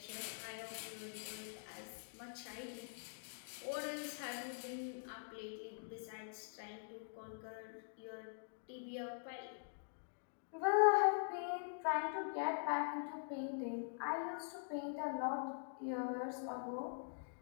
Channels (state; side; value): silent; right; digital silence